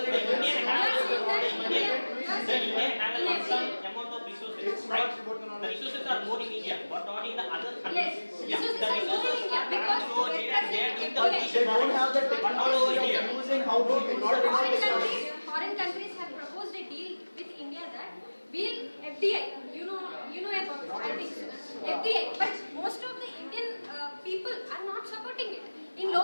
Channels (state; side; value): inverted; both; correlation -1.00